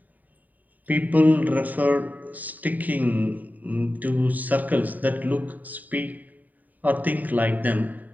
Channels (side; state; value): left; late; 0.081 ms